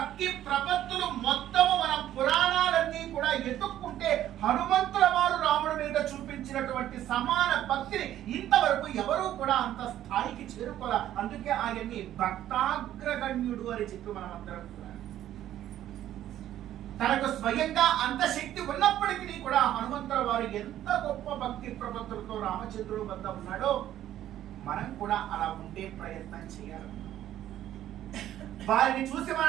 ప్రపత్తులు మొత్తము మన పురాణాలన్నీ కూడా ఎత్తుక్కుంటే హనుమంతుల వారు రాముడి మీద చూపించినటువంటి సమాన భక్తిని ఇంతవరకు ఎవరూ కూడా అంత స్థాయికి చేరుకోలే. అందుకే ఆయన్ని భక్తాగ్రగణ్యుడు అని చెప్పి మనం అందరం కూడా, తనకు స్వయంగా అంత శక్తి ఉన్నప్పటికీ కూడా హనుమంతుల వారు ఎంత గొప్ప భక్తి ప్రపత్తులతో రామచంద్రుడు వద్ద ఉన్నాడో మనం కూడా అలా ఉండే ప్రయత్నం చేయాలి. వారిని చూసి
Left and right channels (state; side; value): quieter; left; 12.3 dB